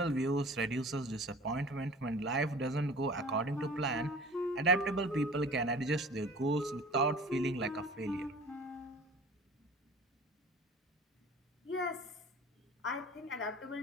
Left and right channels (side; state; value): both; normal; correlation 0.43